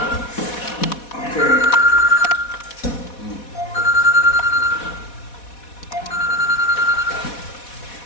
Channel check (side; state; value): right; late; 4.1 ms